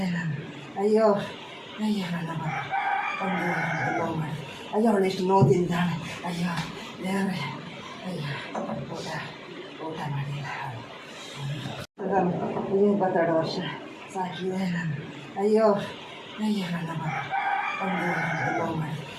ನಾನು. ಅಯ್ಯೋ ಅಯ್ಯೋ ನನ್ನ ಅಯ್ಯೋ ಅವಳು ಎಷ್ಟು ನೋದಿಂದಾಳೆ. ಅಯ್ಯೋ ದೇವರೇ, ಅಯ್ಯೋ ಊಟ ಮಾಡಿಲ್ಲ. 22 ವರ್ಷ ಸಾಕಿದೆ ನಾನು. ಅಯ್ಯೋ ಅಯ್ಯೋ ನನ್ನ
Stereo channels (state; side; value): identical; both; correlation 1.00